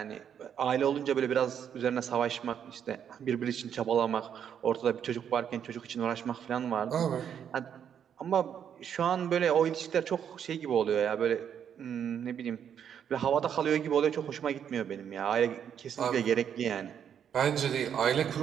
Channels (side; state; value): left; quieter; 8.5 dB